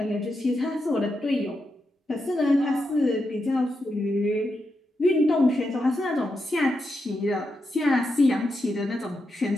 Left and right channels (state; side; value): normal; both; correlation 0.85